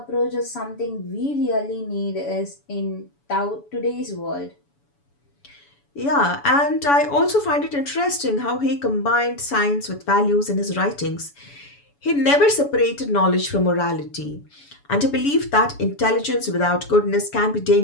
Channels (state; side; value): late; right; 7.0 ms